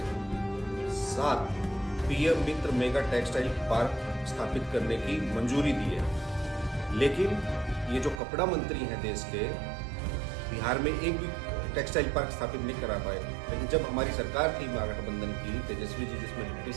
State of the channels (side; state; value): left; drops out; at 8.2 s